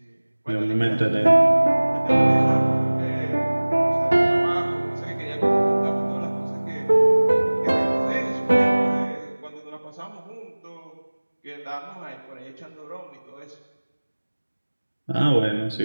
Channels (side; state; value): both; inverted; correlation -1.00